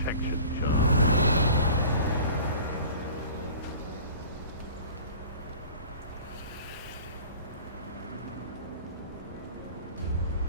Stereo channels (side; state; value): both; inverted; correlation -0.43